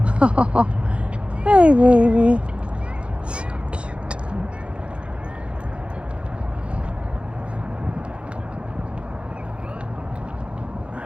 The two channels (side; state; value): left; late; 0.059 ms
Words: Hey, baby. So cute.